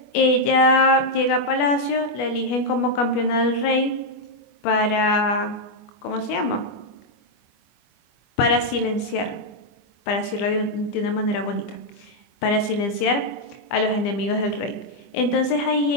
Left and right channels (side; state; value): right; late; 25 ms